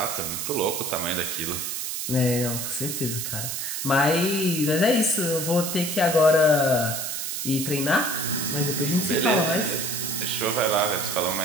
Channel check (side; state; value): right; noise; hiss, 3 dB below the sound